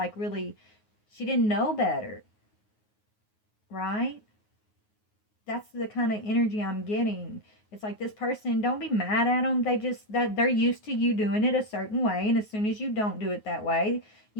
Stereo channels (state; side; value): late; right; 9.4 ms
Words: really, she didn't know better, right? That's the kind of energy I'm getting. It's like this person, don't be mad at them. That they're used to you doing it a certain way, and as soon as you don't do it that way,